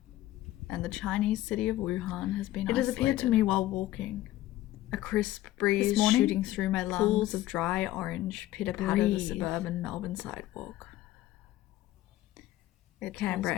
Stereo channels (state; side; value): quieter; right; 15.2 dB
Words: and the Chinese city of Wuhan has been isolated. It has appeared to me while walking. A crisp breeze shooting through my lungs. Pools of dry orange pitter-patter the suburban Melbourne sidewalk. Canberra